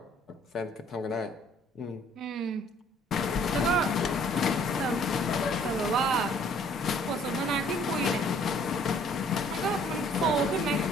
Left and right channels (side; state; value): both; normal; correlation 0.59